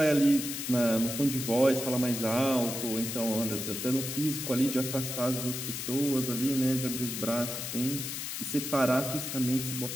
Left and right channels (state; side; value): noise; left; hiss, 5 dB below the sound